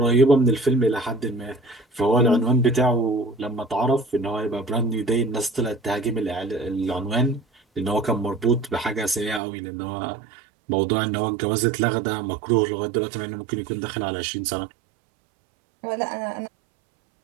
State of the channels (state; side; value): drops out; left; at 9.4 s